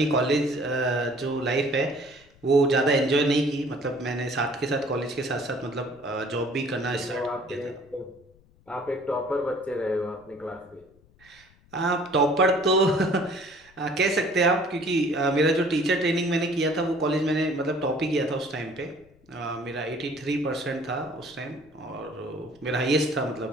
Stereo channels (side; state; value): left; noise; rumble, 29 dB below the sound